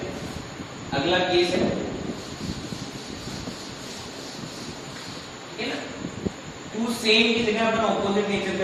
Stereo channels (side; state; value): both; identical; correlation 1.00